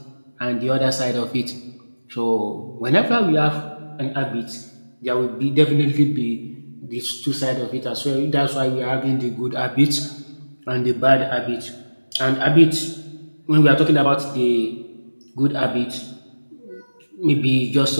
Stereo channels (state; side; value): inverted; both; correlation -1.00